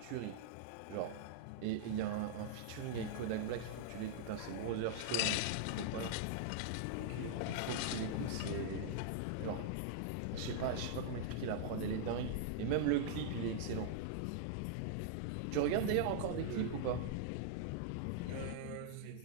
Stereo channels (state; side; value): different; both; correlation -0.01